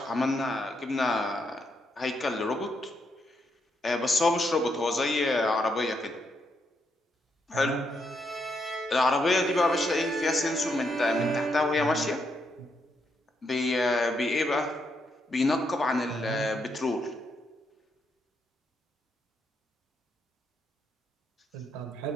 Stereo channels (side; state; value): both; normal; correlation 0.78